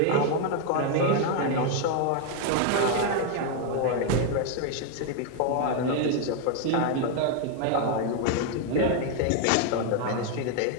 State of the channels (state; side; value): different; both; correlation 0.01